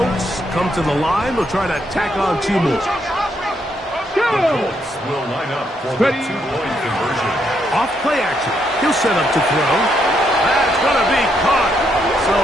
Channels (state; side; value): normal; both; correlation 0.76